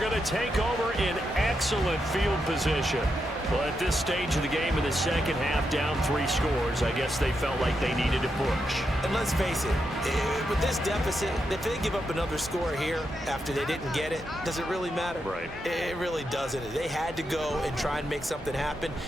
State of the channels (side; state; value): both; normal; correlation 0.84